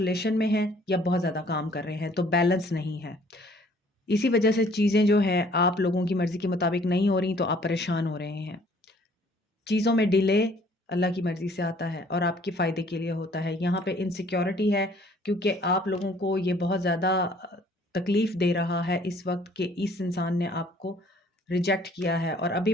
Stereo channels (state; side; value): normal; both; correlation 0.58